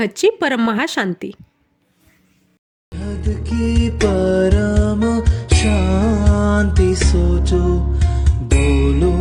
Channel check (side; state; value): both; identical; correlation 1.00